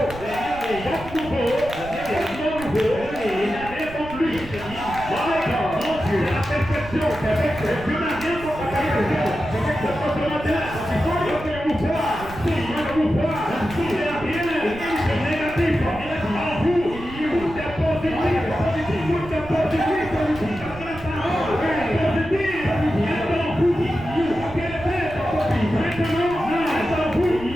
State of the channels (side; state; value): right; noise; rumble, 14 dB below the sound